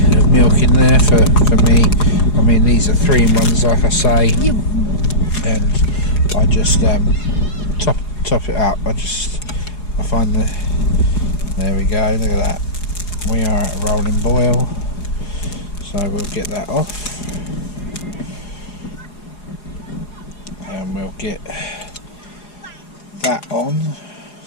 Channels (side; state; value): right; late; 4.8 ms